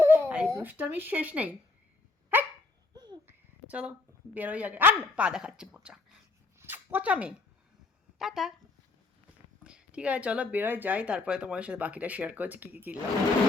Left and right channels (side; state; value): right; quieter; 3.6 dB